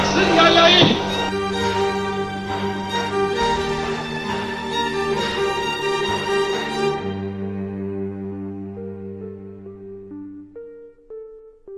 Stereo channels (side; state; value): both; identical; correlation 1.00